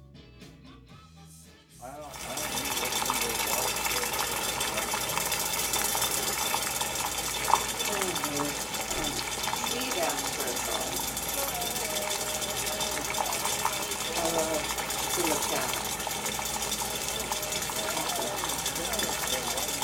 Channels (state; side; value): identical; both; correlation 1.00